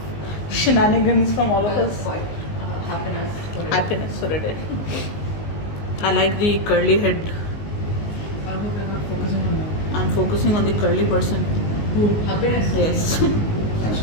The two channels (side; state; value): right; late; 19 ms